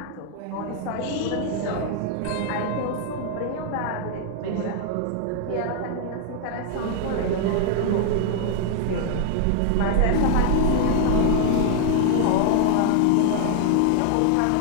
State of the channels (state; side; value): different; both; correlation 0.00